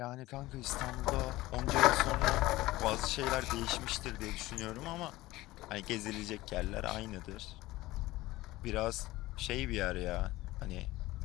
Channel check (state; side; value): quieter; right; 18.3 dB